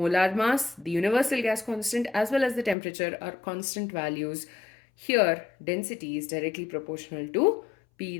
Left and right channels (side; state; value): right; drops out; at 2.8 s